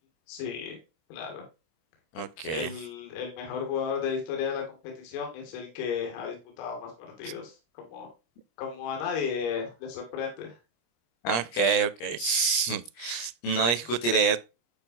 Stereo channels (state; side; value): late; right; 25 ms